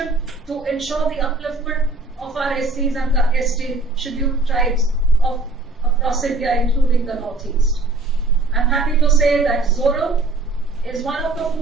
to ensure the upliftment of our SCs and the ST scheduled tribes of across India, including the Northeast. I'm happy to say that Zoram is one of the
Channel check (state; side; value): quieter; left; 3.2 dB